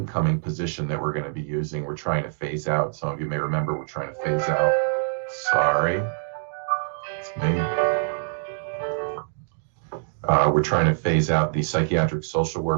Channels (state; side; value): silent; left; digital silence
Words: position that we're going to be using. We're trying to phase out. Some of you may remember we're trying to phase out. Sorry, it's me. We're trying to phase out the psychiatric social